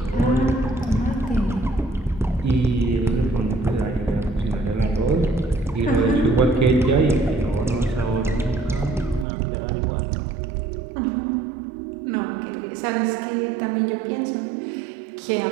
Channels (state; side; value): drops out; left; at 9.2 s